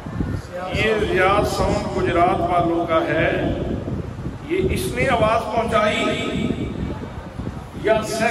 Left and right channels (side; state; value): both; identical; correlation 1.00